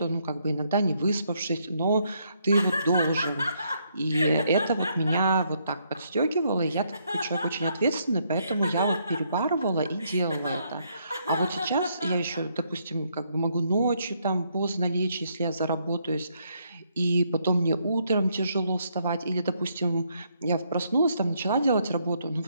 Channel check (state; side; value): inverted; both; correlation -0.73